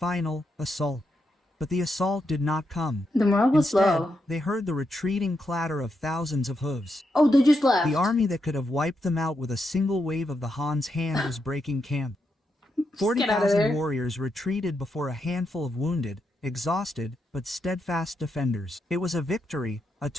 assault. But the assault did not come. The morale was Instead, low. They heard the retreating clatter of thousands of hooves. Oh, they just left. The army that could have wiped them out with a single wave of the Han's hand was breaking camp. 40,000 warriors retreated before a handful of wounded, exhausted, but steadfast defenders. It was a victory, a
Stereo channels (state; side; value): normal; both; correlation 0.83